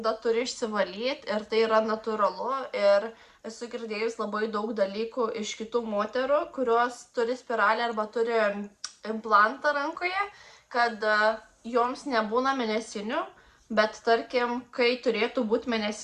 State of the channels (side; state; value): both; identical; correlation 1.00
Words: turi išsivalyti ir tai yra natūralu. Ir esu girdėjus labai daug dalykų iš kitų moterų, kurios turi spiralę arba turi implantą rankoje, kad joms nebūna mėnesinių, Bet tarkim, kai turėtų būti